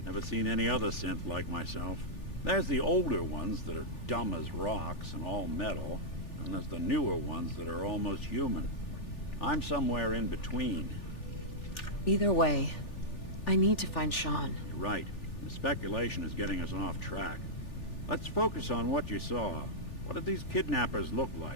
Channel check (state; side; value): late; right; 3.4 ms